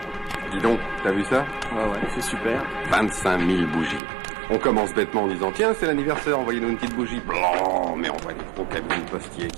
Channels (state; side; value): drops out; left; at 4.0 s